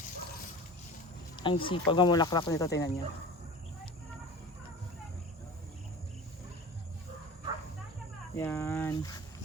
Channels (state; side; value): normal; both; correlation 0.37